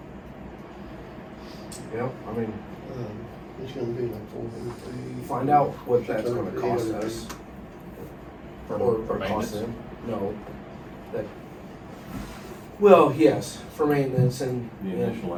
Yep, I mean, It's gonna be like 400 feet. find out what that's gonna 600, cost 800 us. For Or cost maintenance? them. No, that, well, yes, for maintenance and, The and initial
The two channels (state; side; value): identical; both; correlation 1.00